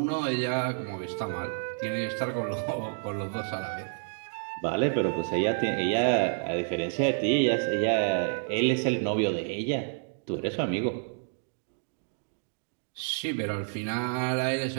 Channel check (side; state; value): left; silent; digital silence